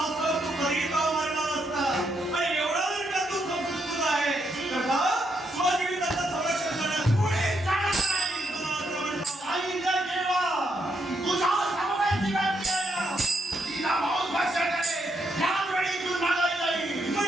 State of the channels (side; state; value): both; normal; correlation 0.78